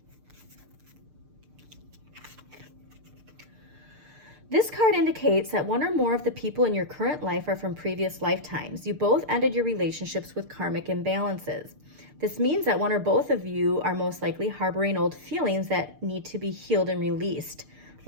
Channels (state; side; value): late; left; 6.7 ms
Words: This card indicates that one or more of the people in your current life are from previous lifetimes. You both ended your relationships with karmic imbalances. This means that one or both of you are most likely harboring old feelings that need to be healed and released.